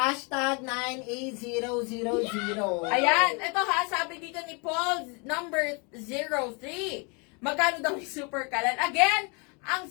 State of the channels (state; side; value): quieter; right; 32.6 dB